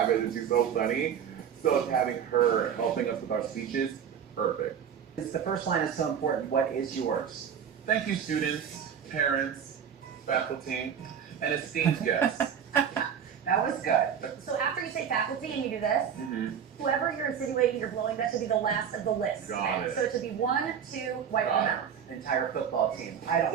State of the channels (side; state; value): left; quieter; 8.1 dB